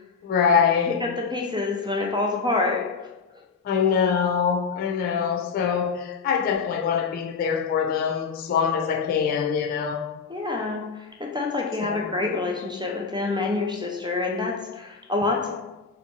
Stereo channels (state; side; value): quieter; right; 5.2 dB